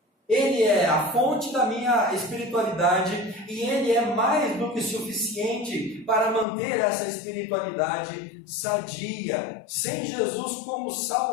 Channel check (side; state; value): right; drops out; at 6.5 s